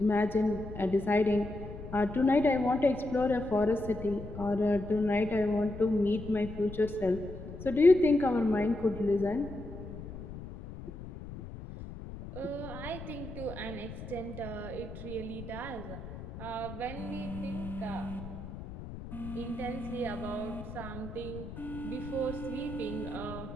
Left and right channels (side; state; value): left; noise; rumble, 11 dB below the sound